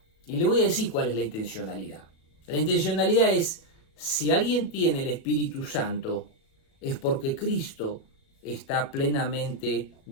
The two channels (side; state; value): right; late; 36 ms